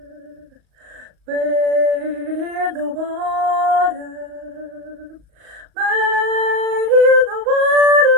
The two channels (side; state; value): left; late; 38 ms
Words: Wade in the water. Wade in the water,